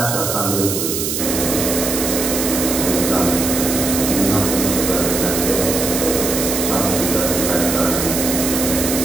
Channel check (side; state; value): right; noise; hiss, 2 dB below the sound